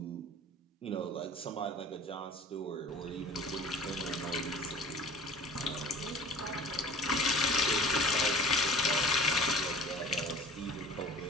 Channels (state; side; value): normal; both; correlation 0.43